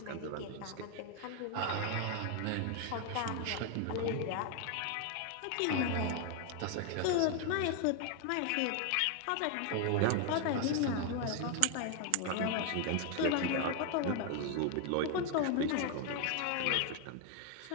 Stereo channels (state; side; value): different; both; correlation 0.00